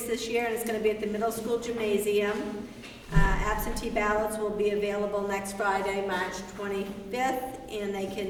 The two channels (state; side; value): identical; both; correlation 1.00